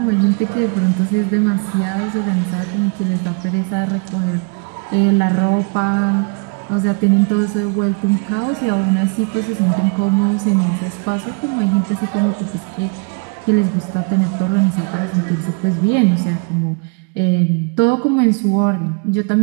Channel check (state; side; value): quieter; left; 34.0 dB